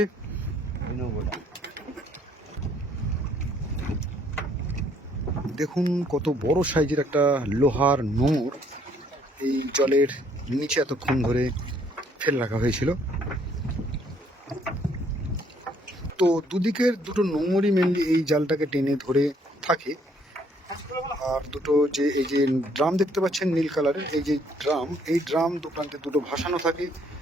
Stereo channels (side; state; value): both; normal; correlation 0.65